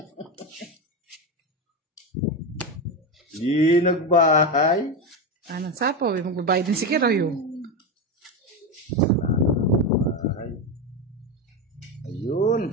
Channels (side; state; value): both; normal; correlation 0.15